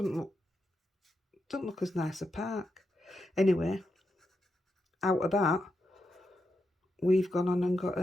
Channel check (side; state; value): both; normal; correlation 0.85